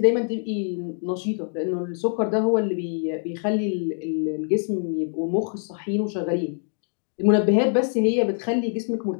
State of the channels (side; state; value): right; silent; 60 dB below the other